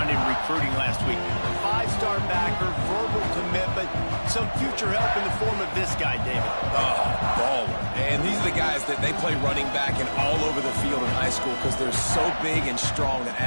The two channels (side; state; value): both; inverted; correlation -1.00